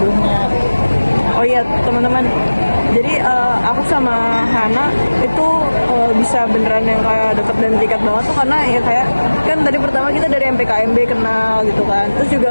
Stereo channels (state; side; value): inverted; both; correlation -1.00